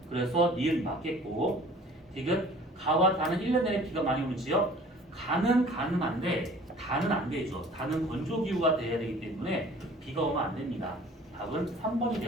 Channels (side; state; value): both; normal; correlation 0.49